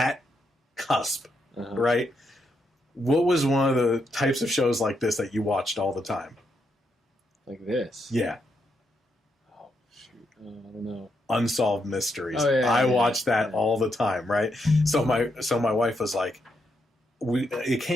cusp, right? What was one of the types of shows like this that you watched all the time? Like this? Yeah. Oh, shoot. I don't know. Unsolved Mysteries. Oh, yeah, I watched that all the time, right? So my wife was like, it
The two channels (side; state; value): both; normal; correlation 0.80